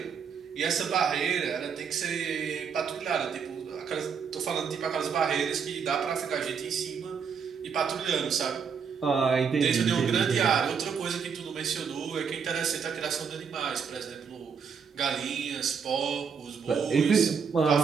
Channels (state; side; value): quieter; left; 6.4 dB